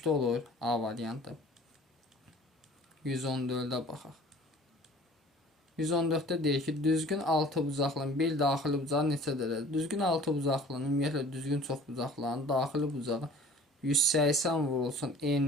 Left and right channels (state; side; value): normal; both; correlation 0.47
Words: olur A variantı. 114-də baxaq. 114-də deyir ki, düzgün 6 bucaqlının bir daxili bucağı neçə dərəcədir? Düzgün 6 bucaqlının, ümumiyyətlə düzgün çox bucaqların daxili bucağı 180 vurulsun